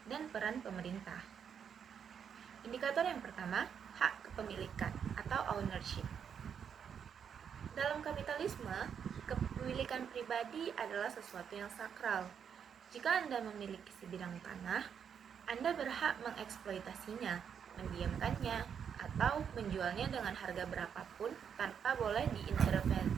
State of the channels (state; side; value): quieter; left; 7.6 dB